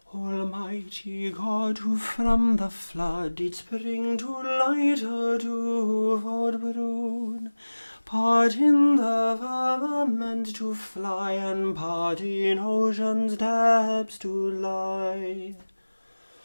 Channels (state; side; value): inverted; both; correlation -1.00